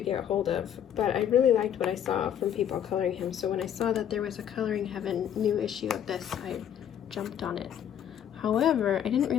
hold of, but I really liked what I saw from people coloring him. So when I saw that there was a Coloring Heaven new issue of this, I jumped on it. However, I didn't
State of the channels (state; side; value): quieter; right; 9.5 dB